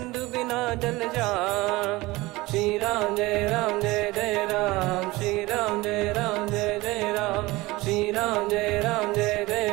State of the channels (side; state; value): left; quieter; 20.8 dB